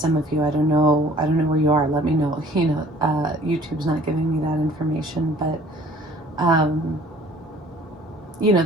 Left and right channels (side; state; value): both; normal; correlation 0.53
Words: of you, I don't know where you are, let me know. You know, YouTube's not giving me that information, but you know,